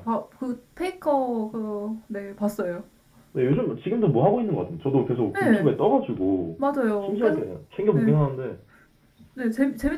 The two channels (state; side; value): identical; both; correlation 1.00